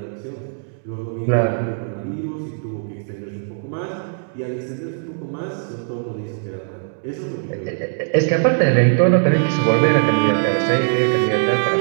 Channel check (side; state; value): left; silent; digital silence